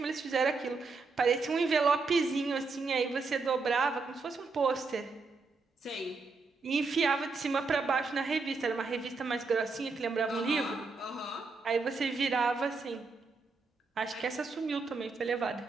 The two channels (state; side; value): quieter; left; 4.2 dB